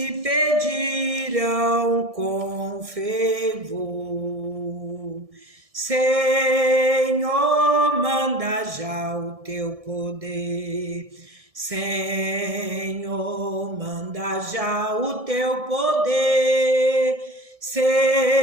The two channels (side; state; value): left; late; 1.6 ms